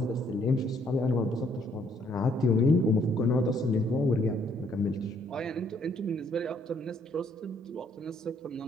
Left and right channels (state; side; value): normal; both; correlation 0.67